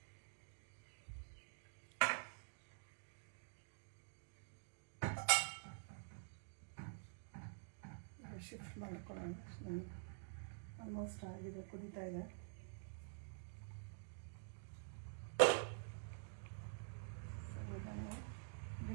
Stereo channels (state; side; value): silent; left; digital silence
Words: ಶಿಫ್ಟ್ ಮಾಡ್ಕೊಳ್ಳೋಣ. ಆಲ್ಮೋಸ್ಟ್ ಆಗಿದೆ, ಕುದೀತಾ ಇದೆ. ಇದನ್ನು